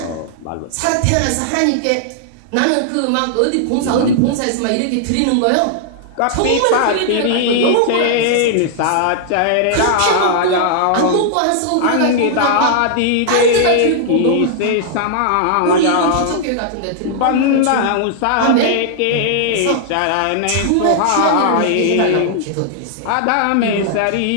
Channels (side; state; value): both; different; correlation -0.01